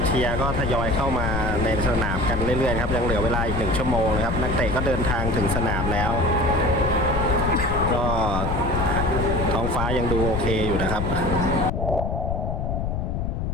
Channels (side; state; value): left; noise; rumble, 1 dB below the sound